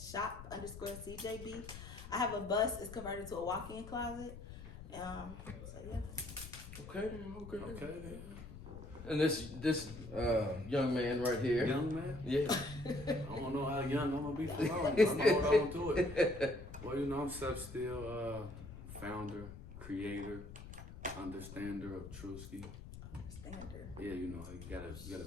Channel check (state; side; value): noise; left; rumble, 13 dB below the sound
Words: I have a bus. It's converted to a walk-in closet. So yeah. Okay. And this young man right here. Young man? Yeah. I don't know how young I'm gonna be for long. I'm gonna hold on to it. Well, I'm Still, founder, creator, understander of Truski. Yeah, you gotta